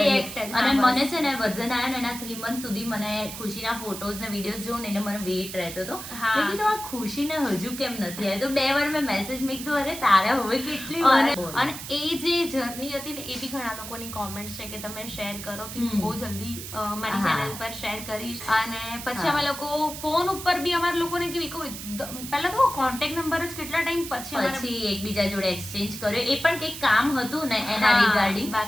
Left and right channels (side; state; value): right; noise; hiss, 10 dB below the sound